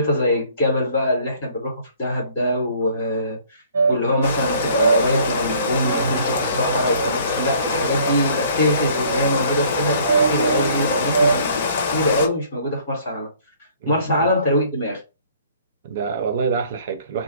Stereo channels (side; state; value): both; inverted; correlation -0.57